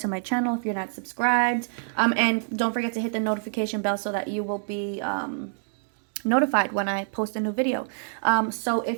my channel if you're not subscribed. And don't forget to hit the notification bell so that you will be notified when I post a new video. So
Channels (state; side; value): silent; left; digital silence